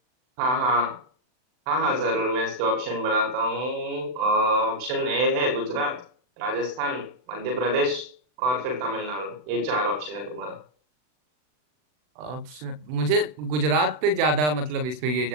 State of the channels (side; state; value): left; late; 40 ms